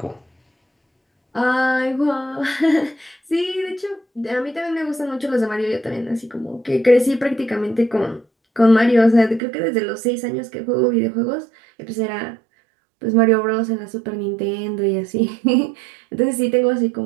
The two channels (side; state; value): left; drops out; at 9.4 s